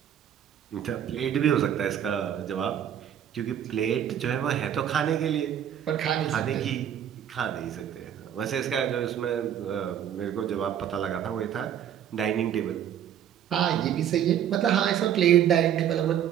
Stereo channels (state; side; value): quieter; left; 9.9 dB